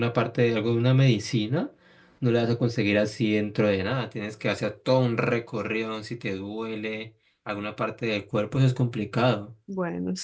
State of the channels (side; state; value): both; identical; correlation 1.00